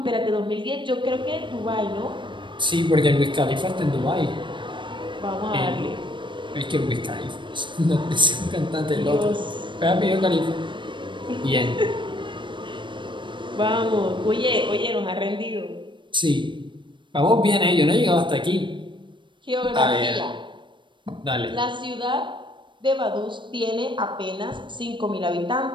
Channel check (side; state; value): left; late; 0.23 ms